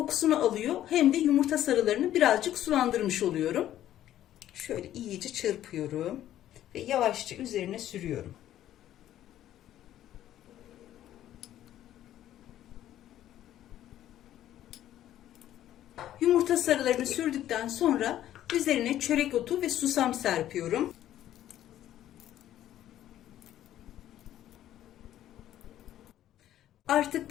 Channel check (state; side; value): quieter; right; 12.3 dB